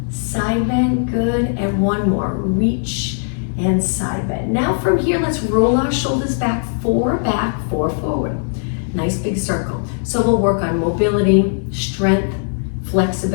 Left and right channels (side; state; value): right; silent; 67 dB below the other